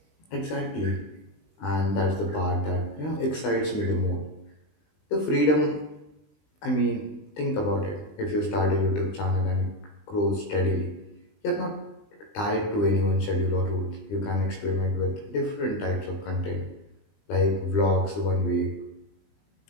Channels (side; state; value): right; late; 20 ms